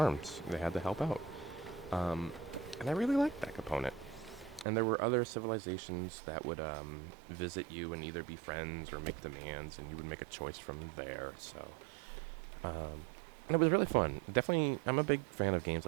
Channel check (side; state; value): left; drops out; at 4.7 s